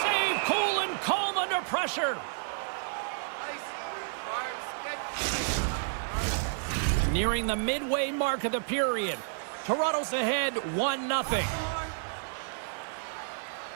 save, cool and calm under pressure. Nearing the midway mark of the period. Toronto's ahead 1-0.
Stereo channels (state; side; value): silent; left; digital silence